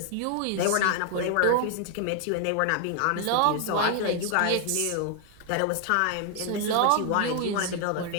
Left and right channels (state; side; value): different; both; correlation 0.00